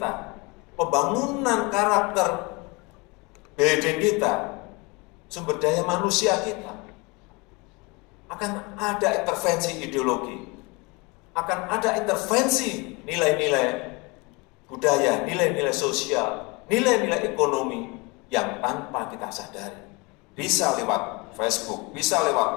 pembangunan karakter beden kita, sumber daya manusia kita, akan ada intervensi ideologi, akan ada intervensi nilai-nilai budaya, nilai-nilai sosial, nilai-nilai ekonomi yang tanpa kita sadari. Bisa lewat Facebook, bisa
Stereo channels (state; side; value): quieter; right; 27.2 dB